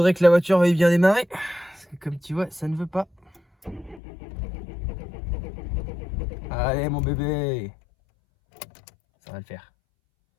que la voiture veuille bien démarrer. Parce que comme tu vois, ça ne veut pas. Allez mon bébé, ça va le faire.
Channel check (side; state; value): right; drops out; at 4.0 s